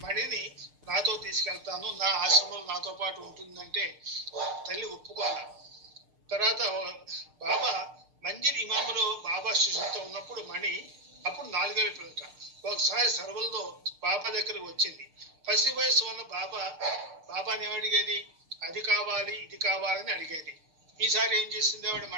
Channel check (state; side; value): late; left; 6.6 ms